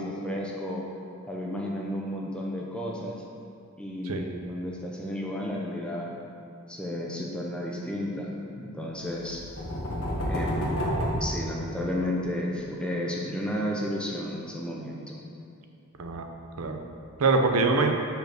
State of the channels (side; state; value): both; normal; correlation 0.36